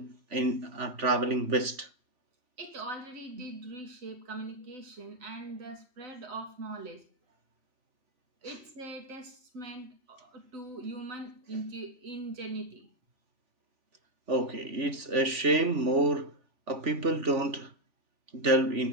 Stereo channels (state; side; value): late; left; 3.4 ms